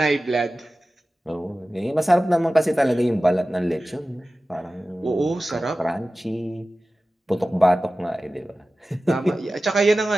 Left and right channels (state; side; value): normal; both; correlation 0.96